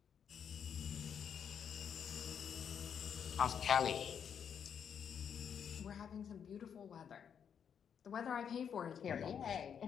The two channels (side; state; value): right; quieter; 7.8 dB